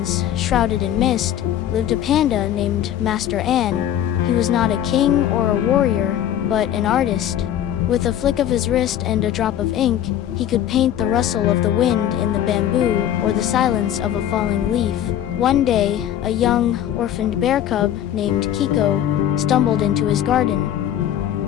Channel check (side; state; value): right; quieter; 11.0 dB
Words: shrouded in mist, lived a panda named Master An. He was not a king or a warrior, but an artist. With a flick of his wrist and a drop of ink, he could paint the rustle of the wind in the bamboo or the silence of a falling leaf. One day, a young, orphaned bear cub named Kiko stumbled into his garden.